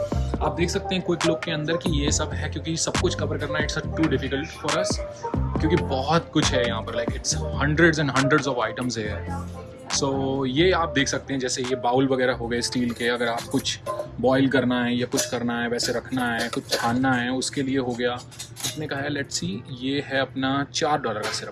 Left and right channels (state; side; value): identical; both; correlation 1.00